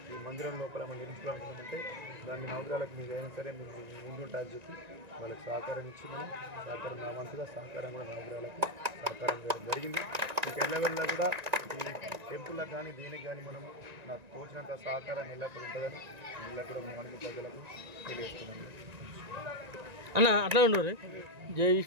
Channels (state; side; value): late; left; 1.9 ms